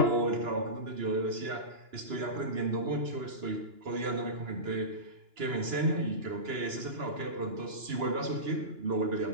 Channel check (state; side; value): late; left; 2.9 ms